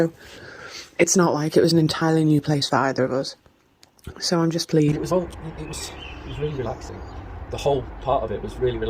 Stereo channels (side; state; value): both; identical; correlation 1.00